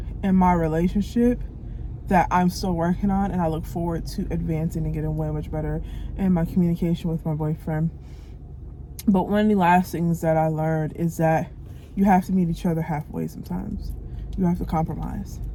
in my relationship that I'm still working on, and I look forward to advancing and getting way much better in my communication with my boyfriend. But one of the last things that I learned is that you have to meet each other halfway sometimes. You have to compromise,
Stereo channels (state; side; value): identical; both; correlation 1.00